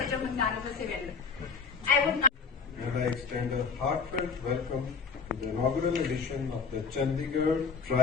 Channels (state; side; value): quieter; right; 5.4 dB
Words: a magnanimous event. And I extend a heartfelt welcome to the inaugural edition of the Chandigarh